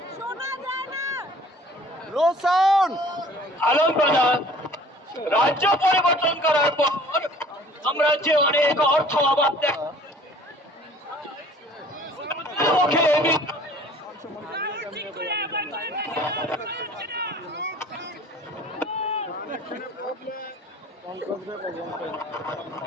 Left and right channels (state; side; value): normal; both; correlation 0.51